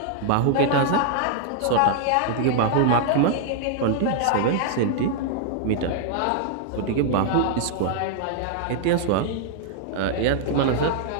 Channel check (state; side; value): different; both; correlation 0.00